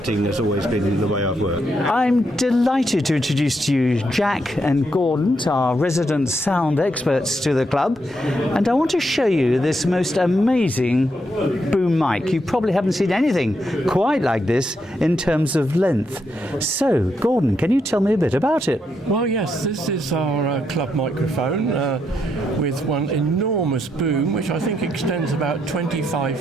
has always been the way I've worked. I'm delighted to introduce to you Jack and Gordon, our resident sound experts to the club, and I want to show you this most amazing boom mic. You probably haven't seen anything quite like this in terms of length. So, Gordon, can you tell me a bit about it? Well, yes, this is our club microphone with one enormous boom, which I think extends about 25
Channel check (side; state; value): both; normal; correlation 0.79